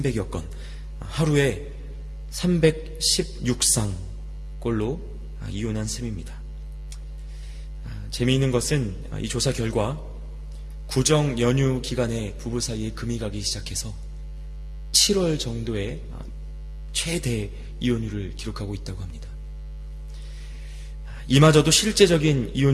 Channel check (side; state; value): both; identical; correlation 1.00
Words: 건, 하루에 316쌍꼴로 이혼한 셈입니다. 재미있는 것은 이 조사 결과 구정 연휴 기간에 부부 사이에 금이 가기 시작해서 7월 정도에 최대 이혼율을 기록하고 있다고 합니다. 이마저도 실제적인